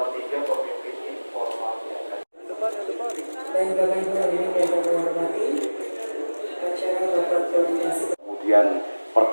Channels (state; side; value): inverted; both; correlation -1.00